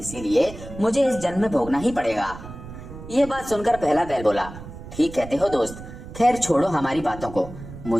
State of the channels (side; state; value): right; noise; rumble, 13 dB below the sound